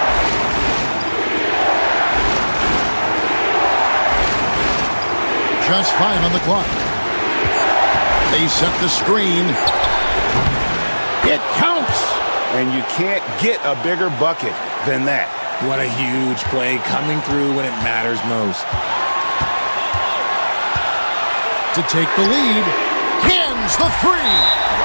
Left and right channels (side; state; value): both; inverted; correlation -1.00